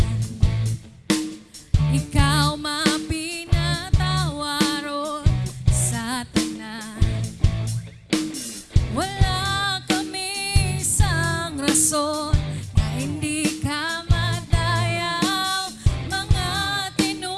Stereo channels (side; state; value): both; identical; correlation 1.00